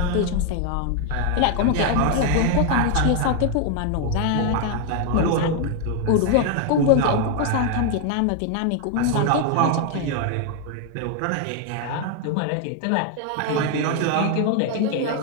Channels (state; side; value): different; both; correlation 0.01